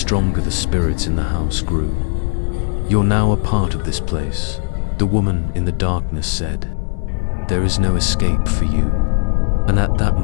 the spirits in the house grew. "You're now a part of this place," the woman in the darkness said. "There is no escape for you." And at that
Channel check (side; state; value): right; silent; digital silence